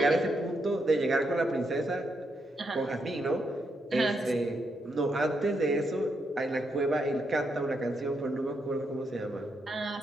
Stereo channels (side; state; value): both; normal; correlation 0.80